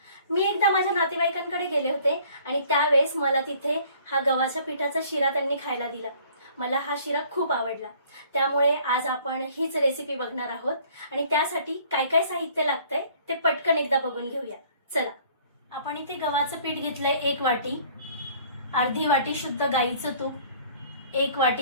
मी एकदा माझ्या नातेवाईकांकडे गेले होते आणि त्यावेळेस मला तिथे हा गव्हाच्या पिठाचा शिरा त्यांनी खायला दिला. मला हा शिरा खूप आवडला. त्यामुळे आज आपण हीच रेसिपी बघणार आहोत आणि त्यासाठी काय काय साहित्य लागतंय ते पटकन एकदा बघून घेऊया. चला. आपण इथे गव्हाचं पीठ घेतलंय 1 वाटी, अर्धी वाटी शुद्ध गाईचं तूप, 1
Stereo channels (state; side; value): inverted; both; correlation -0.55